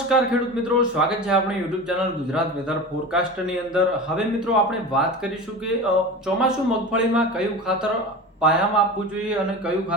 ખેડૂત મિત્રો, સ્વાગત છે આપણી યુટ્યુબ ચેનલ ગુજરાત વેધર ફોરકાસ્ટની અંદર. હવે મિત્રો આપણે વાત કરીશું કે ચોમાસું મગફળીમાં કયું ખાતર પાયામાં આપવું જોઈએ અને કયું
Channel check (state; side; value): normal; both; correlation 0.31